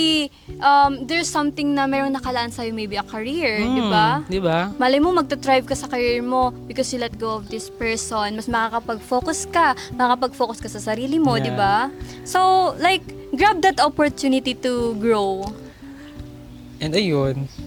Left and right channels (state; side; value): identical; both; correlation 1.00